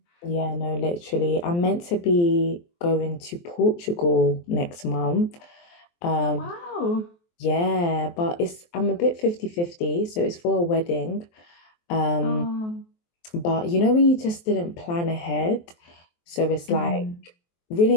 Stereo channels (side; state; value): right; late; 23 ms